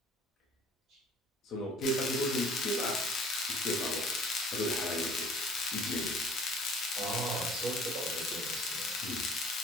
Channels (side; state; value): both; normal; correlation 0.51